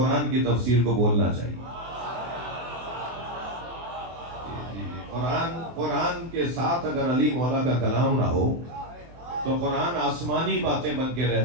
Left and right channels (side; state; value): left; late; 24 ms